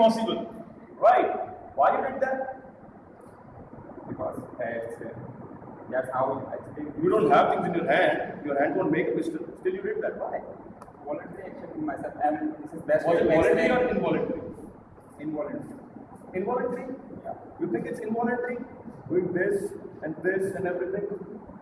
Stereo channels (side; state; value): both; identical; correlation 1.00